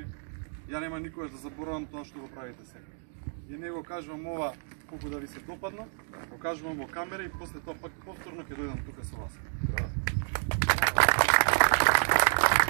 Ја нема никогаш да заборавам тоа што го правите сега. И не го кажувам ова колку да ви се допадно, го кажувам во камера и после тоа пак повторно ќе дојдам тука со вас.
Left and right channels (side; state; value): left; silent; 58 dB below the other